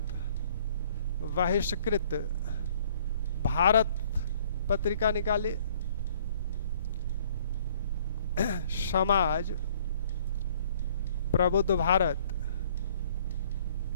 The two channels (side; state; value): both; inverted; correlation -0.58